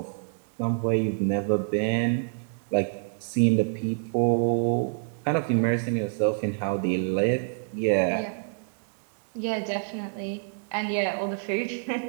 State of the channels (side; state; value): left; silent; 60 dB below the other